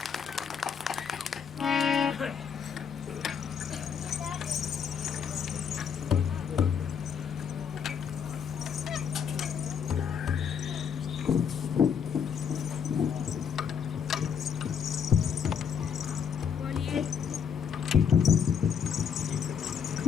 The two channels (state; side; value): quieter; right; 7.3 dB